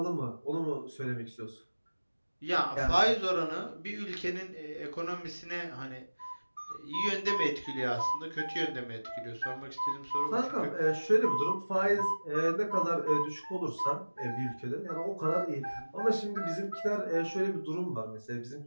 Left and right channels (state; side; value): inverted; both; correlation -1.00